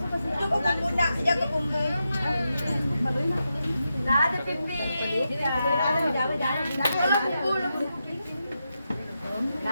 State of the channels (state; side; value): inverted; both; correlation -0.87